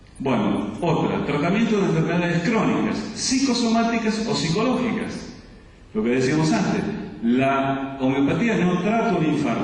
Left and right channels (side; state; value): both; identical; correlation 1.00